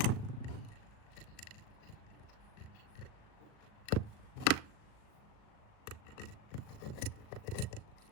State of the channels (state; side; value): late; right; 38 ms